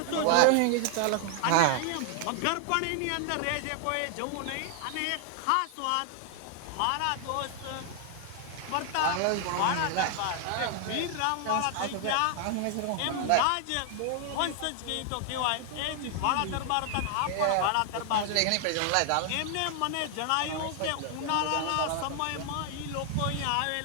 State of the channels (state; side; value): different; both; correlation 0.00